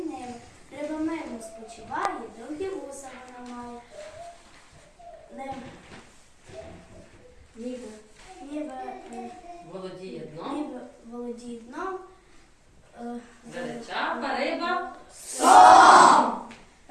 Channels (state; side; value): identical; both; correlation 1.00